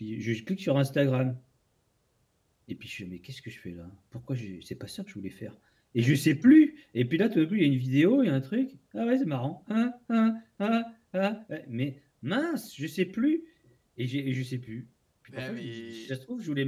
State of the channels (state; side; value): identical; both; correlation 1.00